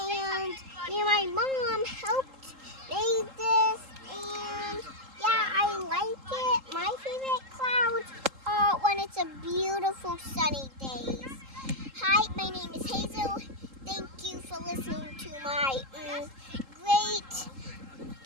me and my mom helped make this, and yeah, I like it. My favorite clouds are when it's a beautiful sunny day.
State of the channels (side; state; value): left; late; 3.8 ms